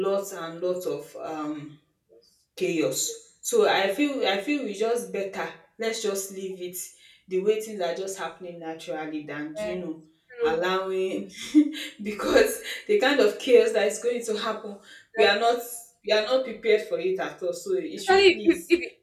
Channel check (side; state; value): both; identical; correlation 1.00